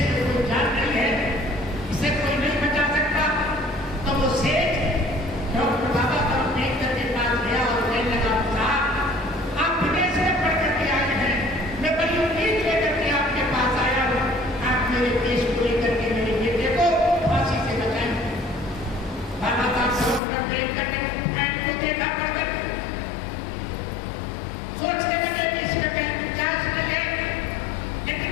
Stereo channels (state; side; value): drops out; right; at 20.2 s